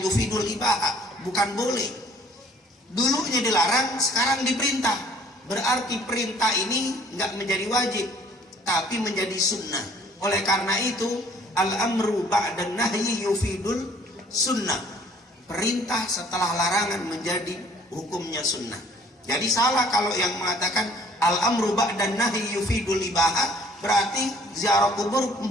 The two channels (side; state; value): both; normal; correlation 0.57